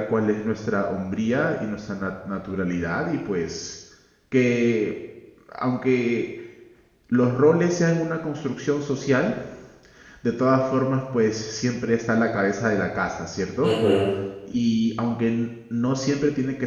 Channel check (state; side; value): identical; both; correlation 1.00